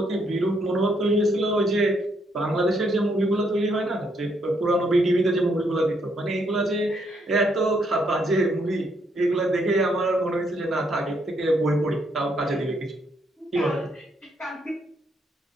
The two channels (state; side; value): normal; both; correlation 0.73